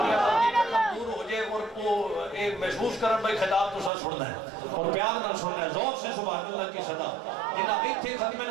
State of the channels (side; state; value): left; drops out; at 3.9 s